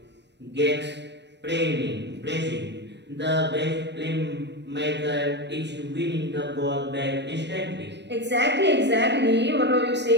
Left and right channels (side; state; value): left; late; 0.50 ms